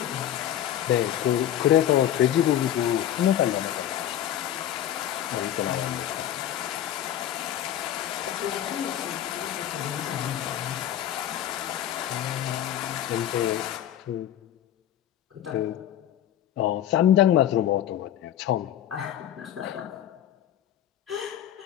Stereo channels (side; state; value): right; quieter; 11.3 dB